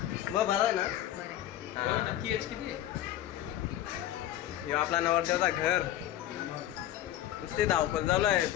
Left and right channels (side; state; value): right; quieter; 12.8 dB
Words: मग बरं ना. हे आपला नवरदेवचा घर. नुसती धावपल चालू आहे.